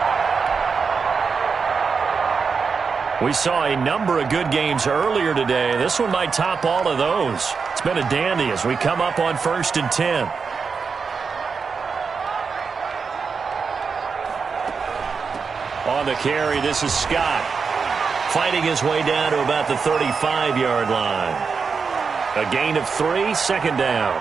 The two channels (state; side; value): quieter; left; 5.4 dB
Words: We saw a number of good games earlier today. This one might top all of those. It's been a dandy as we come up on 1st and 10. On the carry, this is Scott. Fighting his way down to about the 35-yard line. A gain of 3, 2nd down.